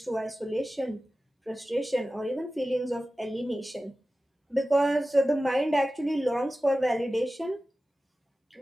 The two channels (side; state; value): both; normal; correlation 0.95